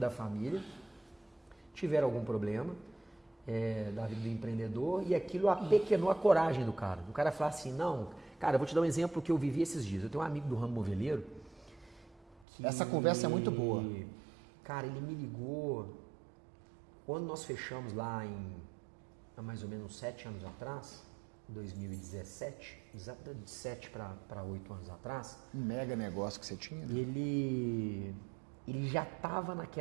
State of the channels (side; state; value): left; drops out; at 12.5 s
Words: família, tiveram algum problema da vida do empreendedor e aquilo apequenou a coragem do cara. O cara falar assim, não, cara, eu vou te dar um exemplo que eu vivi esses dias. Eu tenho um amigo do ramo moveleiro que... Essa conversa é muito boa. Cara, ele me ligou quando nós fechamos lá há mais ou menos 7 anos atrás, 2017, exatamente de 7 para 8 anos atrás. Um mega negócio que você tinha. Ele já estava